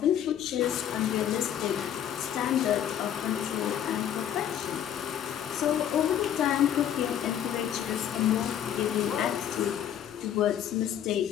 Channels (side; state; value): right; quieter; 10.0 dB